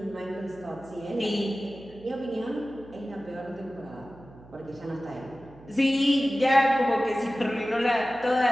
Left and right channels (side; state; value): right; noise; hum, 21 dB below the sound